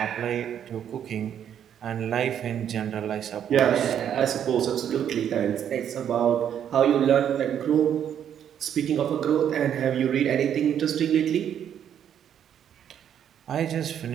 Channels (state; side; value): quieter; left; 9.3 dB